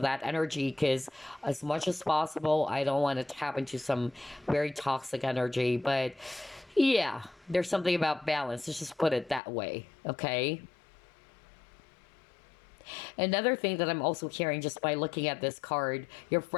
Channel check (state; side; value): drops out; right; at 9.4 s